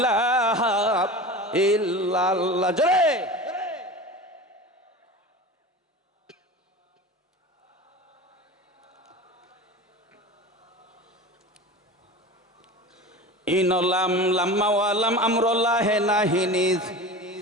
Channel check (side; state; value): both; normal; correlation 0.32